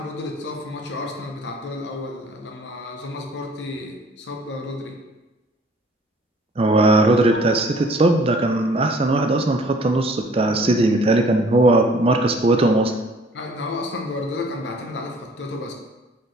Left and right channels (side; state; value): both; normal; correlation 0.54